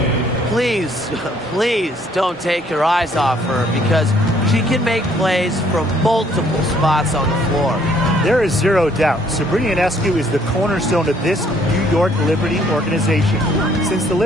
Please, please don't take your eyes off her, because she can make plays from multiple spots on the floor. There is zero doubt Sabrina Ionescu is the cornerstone of this New York Liberty organization. Since the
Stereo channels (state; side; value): normal; both; correlation 0.64